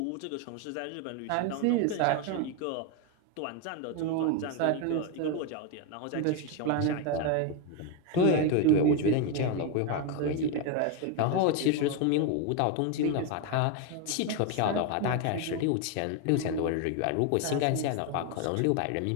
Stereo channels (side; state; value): both; different; correlation 0.02